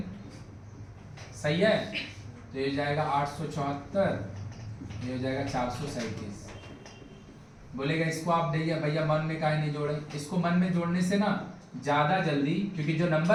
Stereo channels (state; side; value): identical; both; correlation 1.00